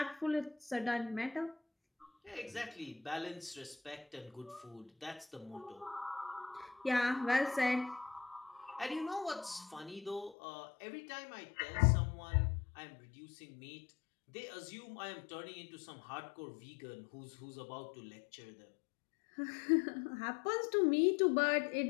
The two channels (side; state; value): right; drops out; at 10.4 s